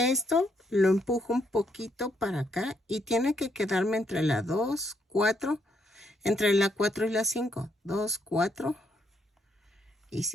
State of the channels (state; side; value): normal; both; correlation 0.75